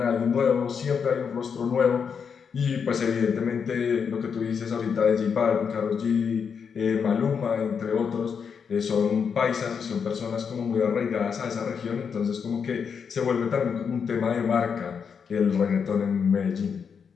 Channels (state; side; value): quieter; right; 6.5 dB